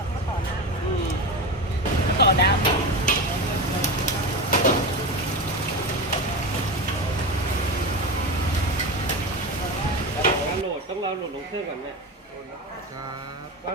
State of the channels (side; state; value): both; normal; correlation 0.23